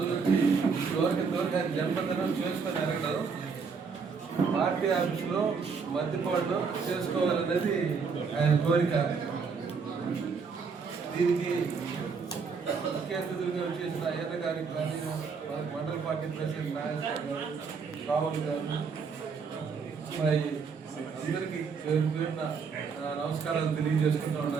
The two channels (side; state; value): left; quieter; 5.4 dB